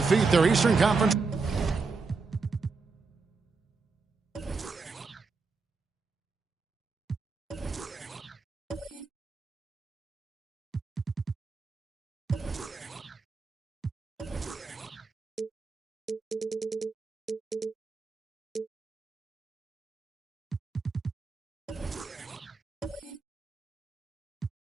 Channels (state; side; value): quieter; left; 4.4 dB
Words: their Eastern Conference.